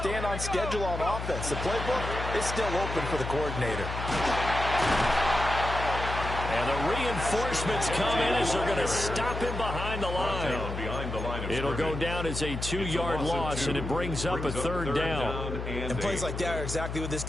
on schedule on offense. The playbook is still open for the coordinator. And the reinforcements come in as they're going to stop him behind the line. It'll go down as a 2-yard loss, and it brings up a 3rd down. And plays like that are exactly what this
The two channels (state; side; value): noise; left; hum, 5 dB below the sound